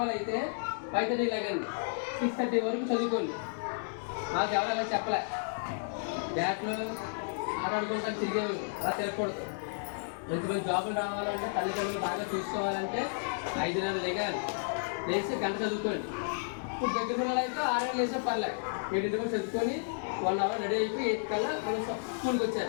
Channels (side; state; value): right; silent; 56 dB below the other